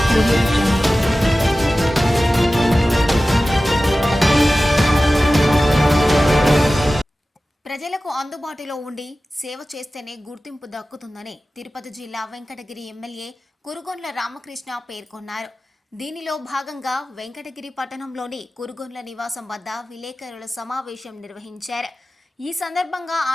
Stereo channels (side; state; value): both; normal; correlation 0.96